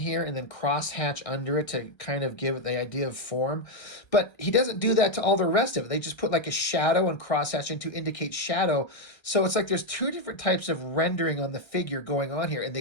and then cross-hatch under it to kind of give it the idea of form. But he doesn't do that to all the rest of it. They just put like a shadow and cross-hatching to indicate shadow. So it's like there's two different types of rendering on the figure going on here, and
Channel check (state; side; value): late; right; 1.3 ms